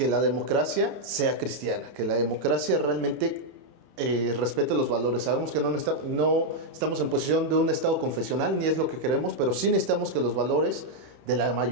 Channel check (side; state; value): left; late; 31 ms